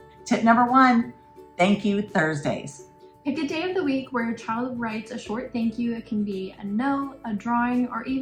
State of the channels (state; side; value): identical; both; correlation 1.00